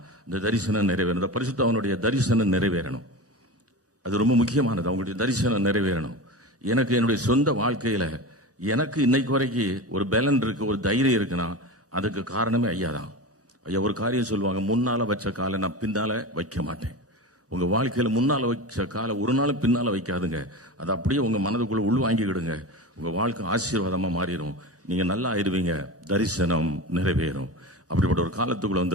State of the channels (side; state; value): both; normal; correlation 0.27